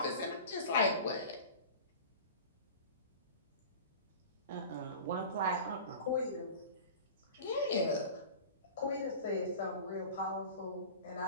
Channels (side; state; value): both; inverted; correlation -0.37